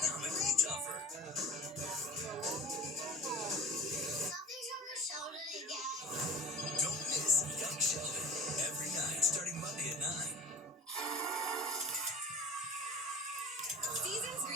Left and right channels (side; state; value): both; normal; correlation 0.39